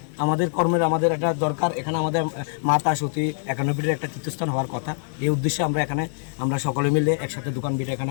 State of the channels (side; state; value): right; silent; 63 dB below the other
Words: আমাদের একটা দরকার, এখানে আমাদের মাতা সতী 91 একটা তীর্থস্থান হওয়ার কথা। এই উদ্দেশ্যে আমরা সকলে মিলে একসাথে দোকান বিটা এখানে